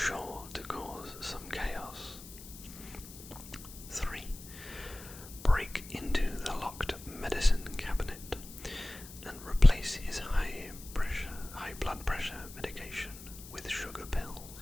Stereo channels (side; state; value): left; noise; hiss, 15 dB below the sound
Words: to cause some chaos. 3. Break into the locked medicine cabinet and replace his high blood pressure medication with sugar pills.